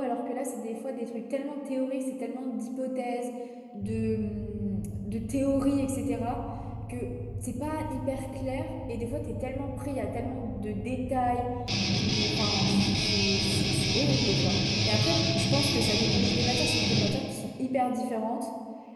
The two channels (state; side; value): identical; both; correlation 1.00